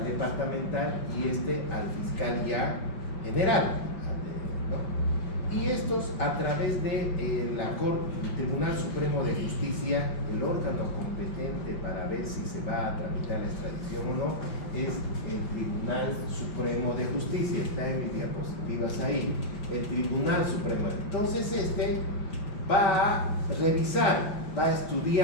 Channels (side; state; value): right; late; 5.3 ms